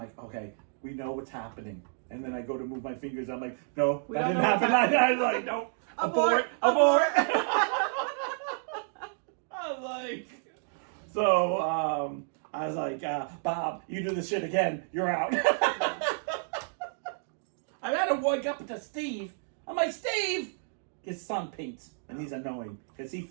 okay, we know what's happening. And then I go to move my fingers. I'm like, no, that didn't happen. I was like, no, abort. I was like, so I was like, Bob, you do this shit again, you're out. I had to wake up to Steve. I'm like, Steve, his son paints, and he's annoying because he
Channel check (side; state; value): left; silent; digital silence